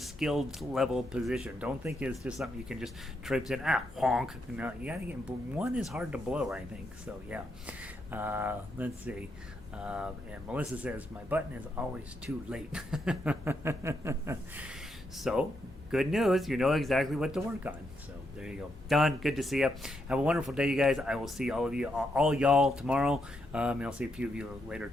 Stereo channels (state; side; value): normal; both; correlation 0.80